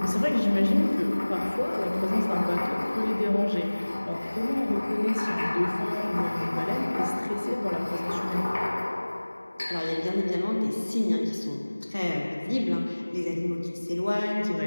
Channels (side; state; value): both; inverted; correlation -1.00